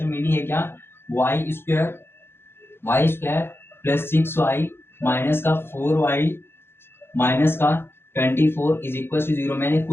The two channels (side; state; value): right; late; 0.11 ms